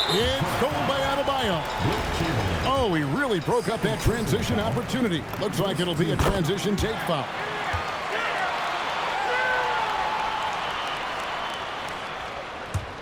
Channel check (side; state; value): both; identical; correlation 1.00